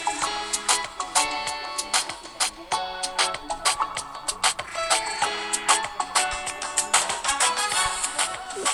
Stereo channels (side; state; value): both; identical; correlation 1.00